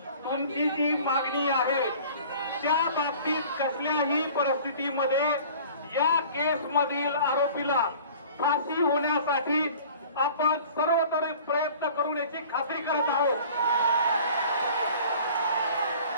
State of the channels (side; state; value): both; inverted; correlation -0.46